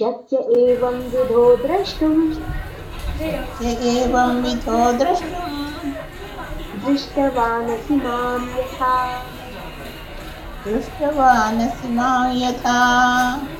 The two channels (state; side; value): identical; both; correlation 1.00